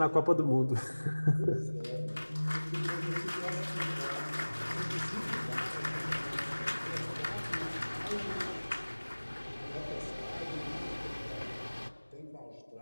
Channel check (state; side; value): inverted; both; correlation -1.00